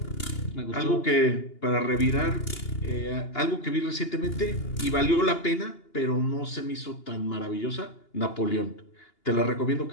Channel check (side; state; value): right; late; 2.8 ms